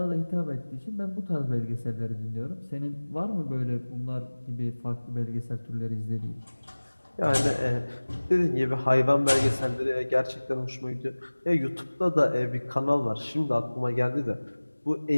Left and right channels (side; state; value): both; inverted; correlation -1.00